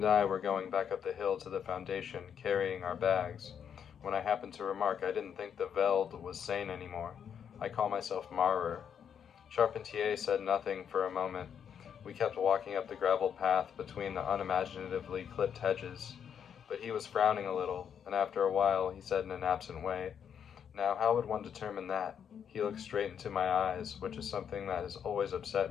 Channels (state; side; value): quieter; right; 8.0 dB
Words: I were going back up the hill to the foundation, carrying our bags, when I happened to remark I didn't think the Veld was sane anymore. I call myself Marrer. Charpentier said nothing for a moment. We kept walking up the gravel path between the unimaginatively clipped hedges, but he was frowning a little, and after a while he said in an absent way, "Now how would one determine that?" He looked straight into my eyes, which is something that has always